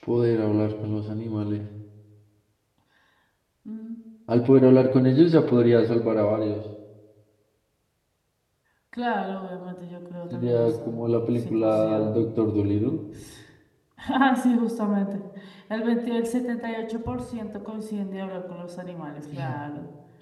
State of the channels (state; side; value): identical; both; correlation 1.00